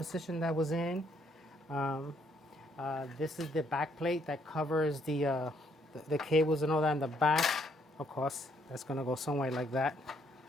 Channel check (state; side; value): normal; both; correlation 0.70